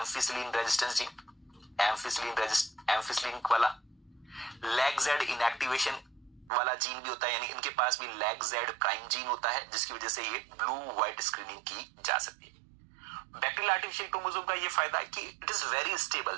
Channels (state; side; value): drops out; left; at 6.5 s